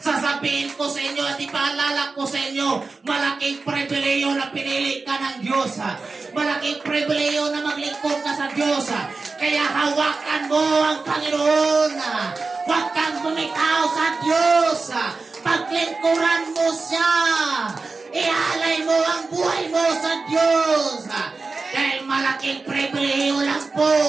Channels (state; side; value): quieter; left; 4.0 dB